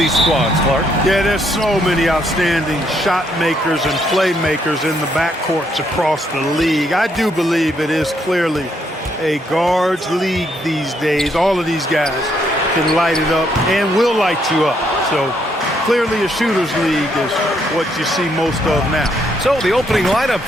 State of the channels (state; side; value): normal; both; correlation 0.73